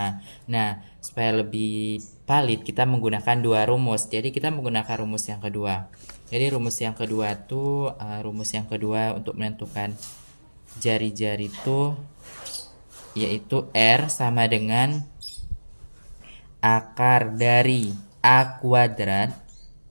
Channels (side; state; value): both; inverted; correlation -1.00